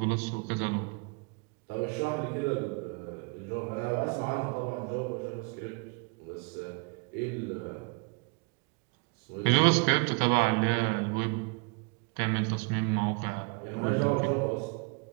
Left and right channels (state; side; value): quieter; left; 32.6 dB